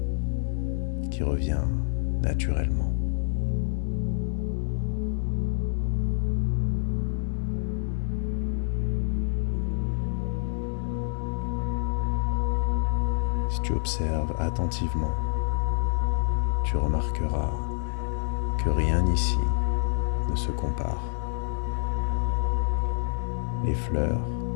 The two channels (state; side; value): silent; right; digital silence